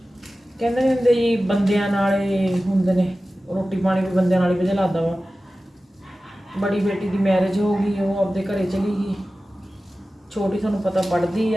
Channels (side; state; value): both; normal; correlation 0.95